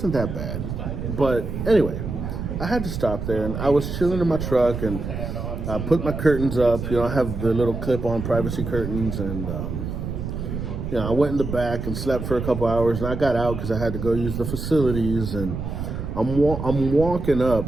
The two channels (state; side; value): noise; right; rumble, 5 dB below the sound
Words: that bad. But anyway, I had to stop there and I was chilling in my truck and I put my curtains up. I have the little clip-on privacy curtains and I went in the back and slept for a couple hours and I got out because I had to go use the facilities and I'm walking up